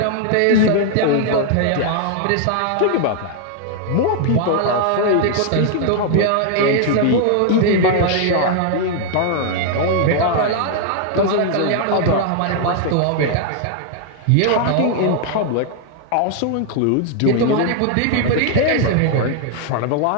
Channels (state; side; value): different; both; correlation 0.00